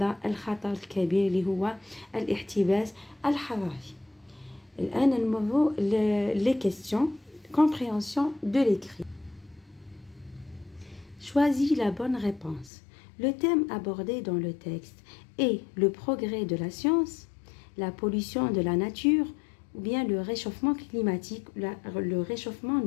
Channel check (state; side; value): drops out; right; at 12.7 s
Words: الخطر الكبير اللي هو الاحتباس الحراري. الآن نمروا les questions, compréhension de l'écrit. Choisis la bonne réponse. Le thème abordé dans le texte est le progrès de la science, la pollution de la nature ou bien le réchauffement climatique, le réchauffement